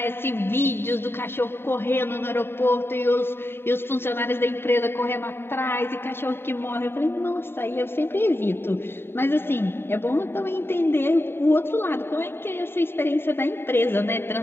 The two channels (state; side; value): late; right; 0.11 ms